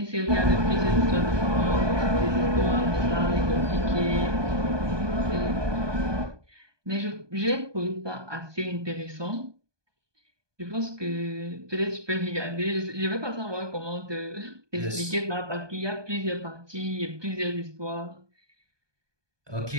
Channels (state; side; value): late; left; 1.2 ms